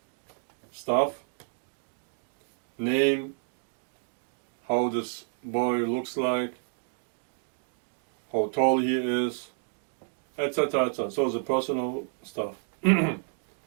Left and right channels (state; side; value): silent; left; digital silence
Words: stuff, name, how this boy looks like, how tall he is, etc., etc. So the personal stuff.